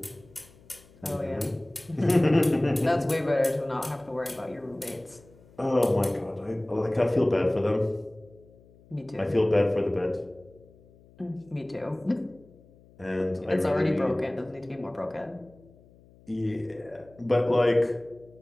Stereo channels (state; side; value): noise; left; hum, 26 dB below the sound